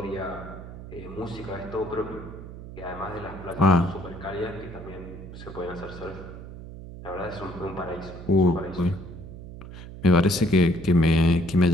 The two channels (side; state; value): right; noise; hum, 13 dB below the sound